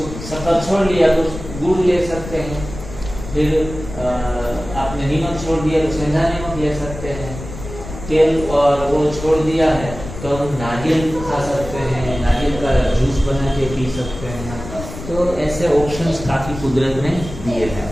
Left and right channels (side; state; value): left; noise; rumble, 11 dB below the sound